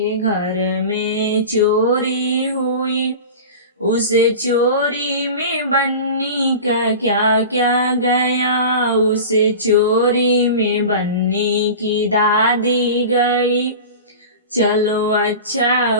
घर में चोरी हुई। उस चोरी में बन्नी का क्या क्या गया, उस चोरी में बन्नी की दादी गई। चलो अच्छा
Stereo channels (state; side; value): inverted; both; correlation -0.33